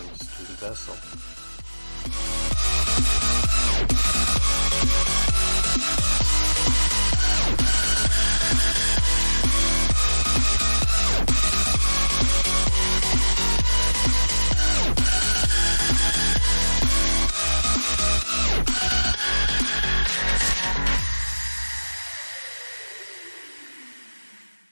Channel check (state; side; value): inverted; both; correlation -1.00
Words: to the vessel.